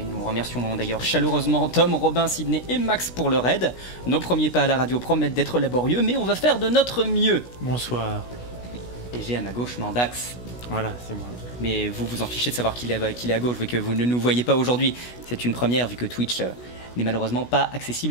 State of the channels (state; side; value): late; right; 16 ms